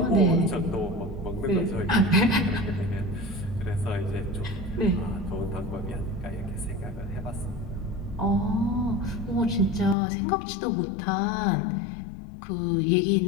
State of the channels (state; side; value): drops out; right; at 10.0 s